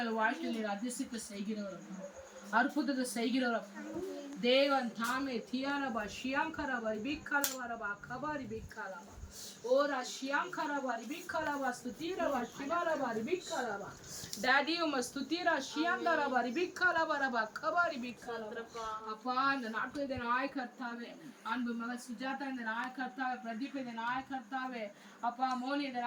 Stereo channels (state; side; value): identical; both; correlation 1.00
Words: வாழ்க்கையில் நீர் அதிசயத்தை செய்கிறவர், அற்புதத்தை செய்கிறவர் தேவன் தாமே. தியாரபா ஷியாங்கரபா ரிபிகாலவரபா கபாரி பிகாலபா ஓரா ஷியாங்கரபா ரிபிகாலபா ஸ்துதிரபா ஷிவாரபா ரிபிகாலபா. டாடி உம ஸ்துதிரா ஷியாங்கரபா ரிபிகாலவரபா கபாரி பிகாலபா. அப்பா இந்த நாட்டில் இந்த நாய கர்த்தாவே, அன்பு மகள் சுஜாதா இந்த நாய கர்த்தாவே, பிரதீப் இந்த நாய கர்த்தாவே, அப்பா மோனி இந்த